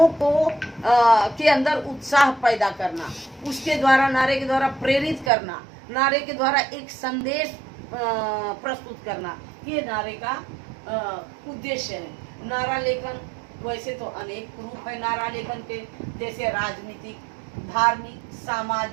को के अंदर उत्साह पैदा करना, उसके द्वारा नारे के द्वारा प्रेरित करना, नारे के द्वारा एक संदेश प्रस्तुत करना, ये नारे का उद्देश्य है। नारा लेखन वैसे तो अनेक रूप है नारा लेखन के, जैसे राजनीतिक, धार्मिक,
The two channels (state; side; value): drops out; left; at 5.3 s